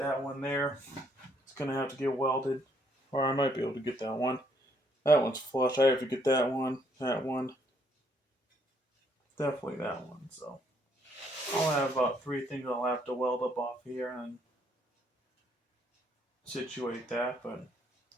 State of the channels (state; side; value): normal; both; correlation 0.69